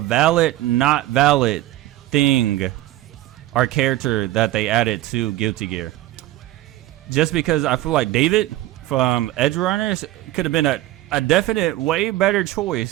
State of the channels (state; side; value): quieter; left; 16.1 dB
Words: not valid thing or character that they added to Guilty Gear. Just because I feel like David from Edgerunners could have been a definite way better